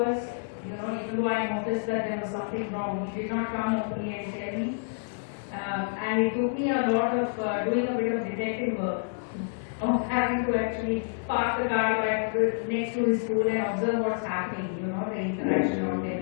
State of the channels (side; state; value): right; silent; 59 dB below the other